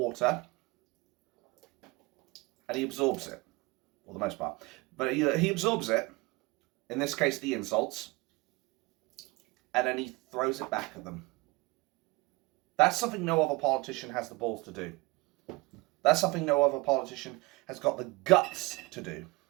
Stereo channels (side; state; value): left; quieter; 24.4 dB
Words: and he absorbs it, for the most part. But he absorbs it, in this case the insults, and then he throws it back at them. That's something no other politician has the balls to do. That's something no other politician has got the guts to do.